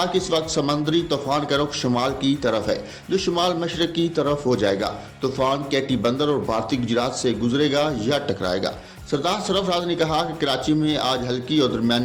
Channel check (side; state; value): both; identical; correlation 1.00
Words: कि इस वक्त समुद्री तूफान का रुख शुमाल की तरफ है, जो शुमाल मशरक की तरफ हो जाएगा। तूफान कैटी बंदर और भारतीय गुजरात से गुजरेगा या टकराएगा। सरदार सरफराज ने कहा कि कराची में आज हल्की और